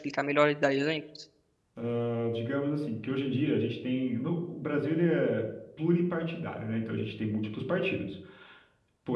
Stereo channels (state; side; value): identical; both; correlation 1.00